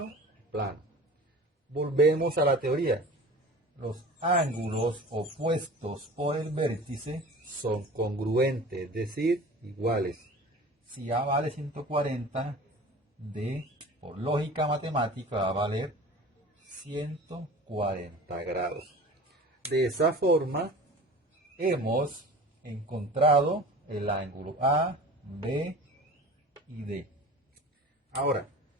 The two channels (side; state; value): both; normal; correlation 0.39